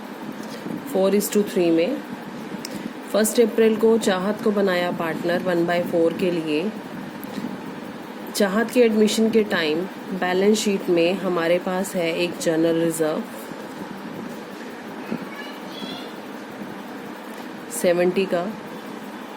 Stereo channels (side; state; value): both; identical; correlation 1.00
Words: 4:3 में। 1 अप्रैल को चाहत को बनाया पार्टनर 1/4 के लिए। चाहत के एडमिशन के टाइम बैलेंस शीट में हमारे पास है एक जनरल रिजर्व 70 का।